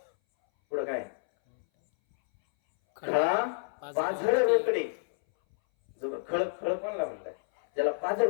पुढं काय, खळा पाझर रोकडे. जो खळ खळ कोणला म्हणताय, ज्याला पाझर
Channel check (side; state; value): right; silent; 58 dB below the other